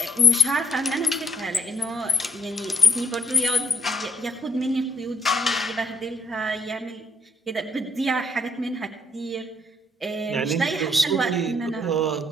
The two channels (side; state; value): both; normal; correlation 0.64